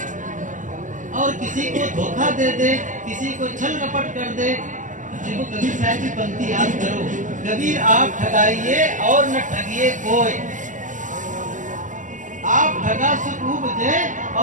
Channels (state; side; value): late; left; 0.37 ms